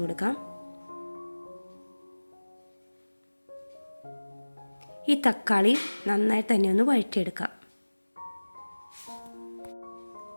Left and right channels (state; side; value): inverted; both; correlation -1.00